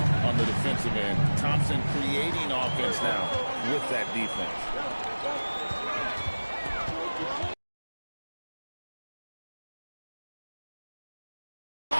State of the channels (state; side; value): inverted; both; correlation -1.00